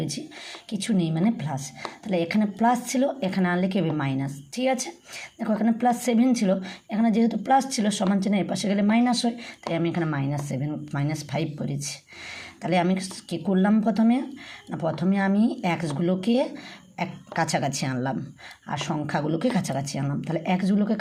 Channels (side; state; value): both; identical; correlation 1.00